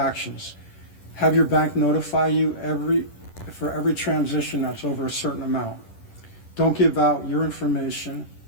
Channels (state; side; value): late; right; 10 ms